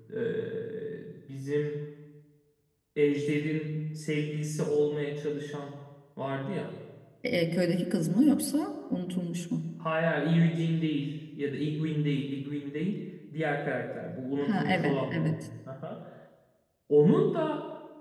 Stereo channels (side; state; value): both; identical; correlation 1.00